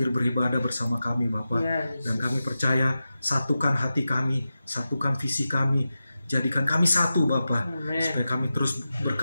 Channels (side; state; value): both; inverted; correlation -0.92